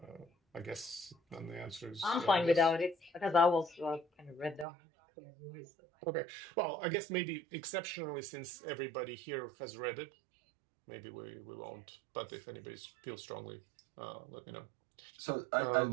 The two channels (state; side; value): drops out; left; at 4.7 s